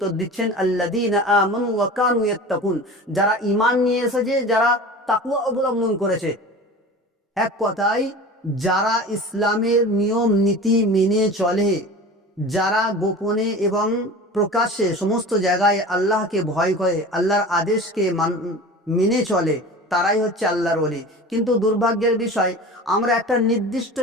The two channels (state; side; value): normal; both; correlation 0.36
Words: দিচ্ছেন, আল্লাযীনা আমানু ওয়া কানু ইয়াত্তাকুন, যারা ঈমান নিয়ে এসেছে, যারা তাকওয়া অবলম্বন করেছে। এক কথায় যারা ইসলামের নিয়ম নীতি মেনে চলে, যারা গোপনে এবং প্রকাশ্যে সমস্ত জায়গায় আল্লাহকে ভয় করে, আল্লাহর আদেশকে মেনে চলে, তারাই হচ্ছে আল্লাহর ওলি। কিন্তু দুর্ভাগ্যের বিষয়, আমরা একটা নির্দিষ্ট